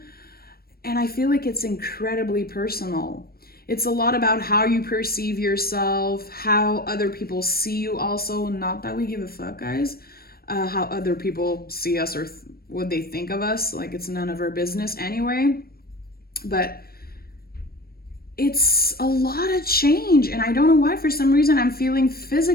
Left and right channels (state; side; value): late; right; 0.44 ms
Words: And I feel like it's incredibly personal. It's a lot about how you perceive yourself, how other people see you also. Not that we give a fuck, guys. How other people see us or what they think of us, like it's none of our business anyway. But it's a lot of change, and I don't know why. For some reason I'm feeling